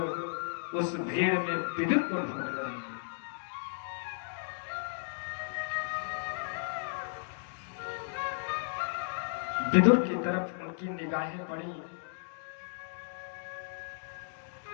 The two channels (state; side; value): silent; right; digital silence